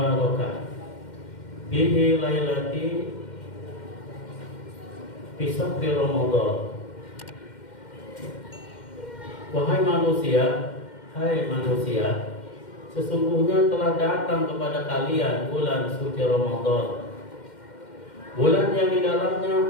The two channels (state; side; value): late; right; 2.1 ms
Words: bihi lailati fi sahri Ramadan. Wahai manusia, hai manusia, sesungguhnya telah datang kepada kalian bulan suci Ramadan, bulan yang di